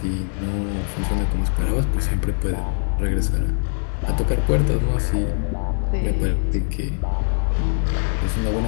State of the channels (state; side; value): silent; right; 64 dB below the other